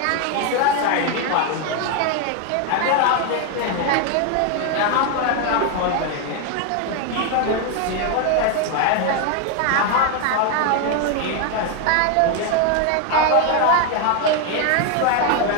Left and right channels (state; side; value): different; both; correlation 0.01